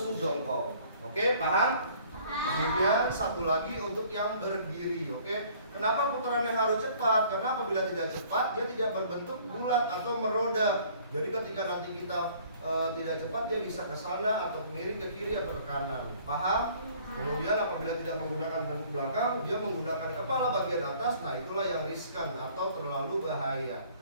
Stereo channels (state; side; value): inverted; both; correlation -0.56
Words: jongkok. Oke, paham? Kemudian satu lagi untuk yang berdiri. Oke, kenapa putarannya harus cepat? Karena apabila tidak cepat dia tidak berbentuk bulat atau meroda. Jadi ketika nanti kita tidak cepat dia bisa ke sana atau miring ke kiri atau ke kanan. Paham? Kemudian apabila tidak menggunakan tengkuk belakang, dia menggunakan kepala bagian atas. Nah, itulah yang riskan atau terlalu bahaya.